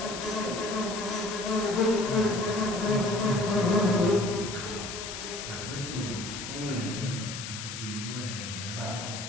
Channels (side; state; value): left; noise; hiss, 7 dB below the sound